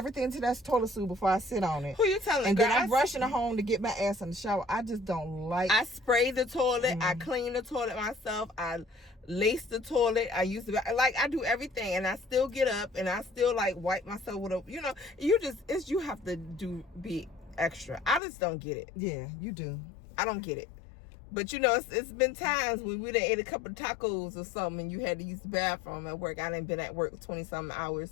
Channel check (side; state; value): right; drops out; at 18.2 s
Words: to that toilet seat before I sit on it. Who you telling? And then I'm rushing home to get my ass in the shower. I just don't like. I spray the toilet. I clean the toilet myself. I lace the toilet. I use the I do everything, and I still get up and I still like wipe myself with a. You know, you have to be extra. I just don't get it. Yeah, you do. I don't get it. But you know, it's been times when we done ate a couple of tacos or something, and you had to use the bathroom at work. I done been at work 20-something